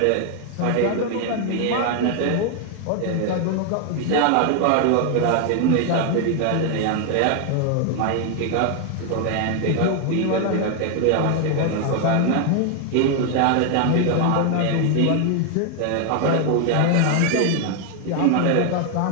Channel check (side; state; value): both; different; correlation 0.00